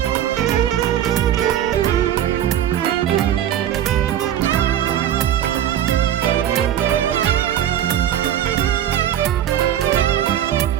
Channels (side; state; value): left; quieter; 11.0 dB